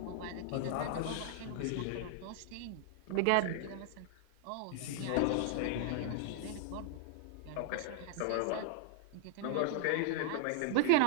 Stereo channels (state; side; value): different; both; correlation -0.01